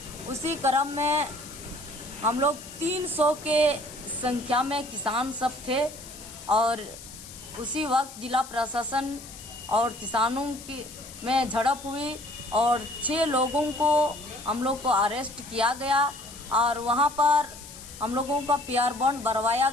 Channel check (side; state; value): left; noise; hiss, 15 dB below the sound